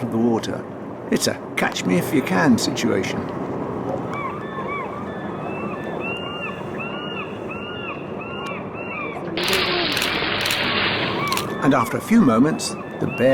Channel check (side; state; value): both; identical; correlation 1.00